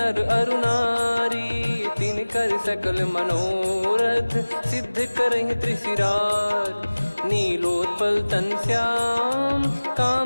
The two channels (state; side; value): inverted; both; correlation -1.00